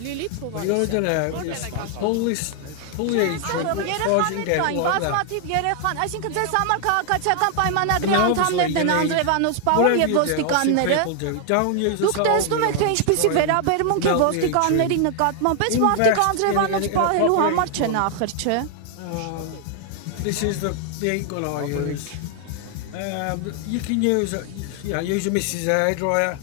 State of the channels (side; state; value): both; different; correlation 0.00